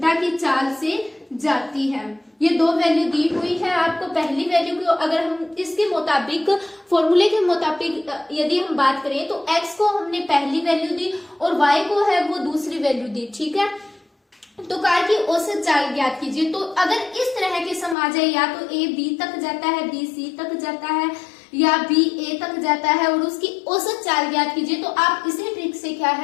की चाल से जाती है। ये 2 वैल्यू दी हुई है आपको। पहली वैल्यू को अगर हम इसके मुताबिक फॉर्मूले के मुताबिक यदि हम बात करें तो x को हमने पहली वैल्यू दी और y को है वो दूसरी वैल्यू दी। ठीक है, तो कार की औसत चाल ज्ञात कीजिए। तो अगर इस तरह के सम आ जाए, या तो a b तक जाता है, b c तक जाता है, या b a तक जाता है और उसकी औसत चाल ज्ञात कीजिए, तो आप इसी ट्रिक से क्या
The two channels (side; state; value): right; drops out; at 17.9 s